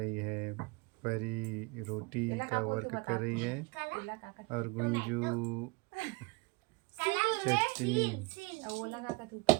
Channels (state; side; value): quieter; left; 28.3 dB